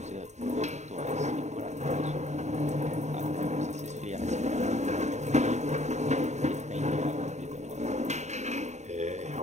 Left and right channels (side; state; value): left; late; 0.33 ms